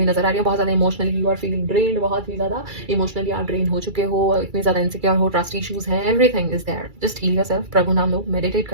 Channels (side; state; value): left; late; 2.3 ms